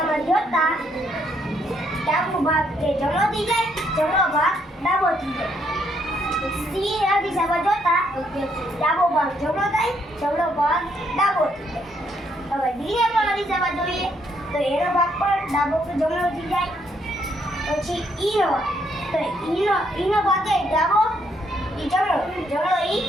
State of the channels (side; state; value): both; normal; correlation 0.72